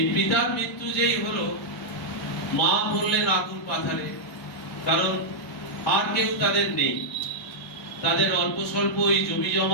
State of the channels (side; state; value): both; normal; correlation -0.06